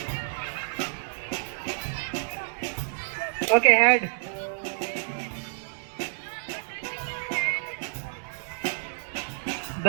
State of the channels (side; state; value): left; silent; 59 dB below the other